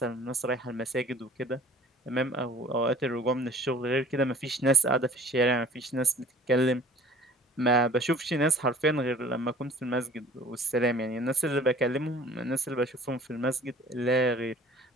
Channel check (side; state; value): both; normal; correlation 0.50